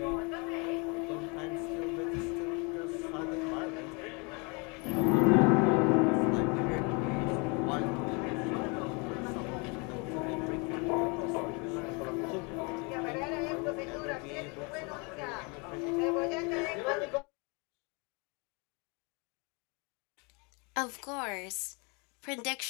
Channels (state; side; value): quieter; right; 31.2 dB